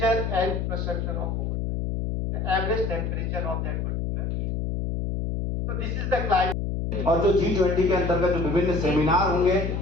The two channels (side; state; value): left; noise; hum, 2 dB below the sound